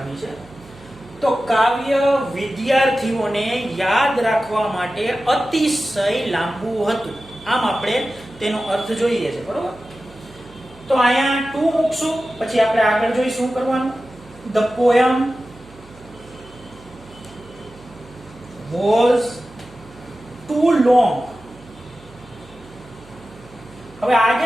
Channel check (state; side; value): noise; right; hum, 23 dB below the sound